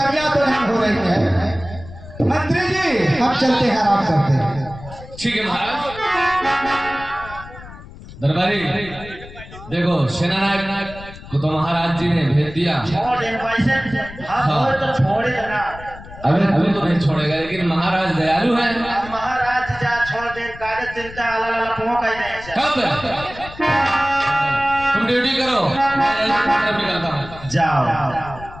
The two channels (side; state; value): left; noise; rumble, 16 dB below the sound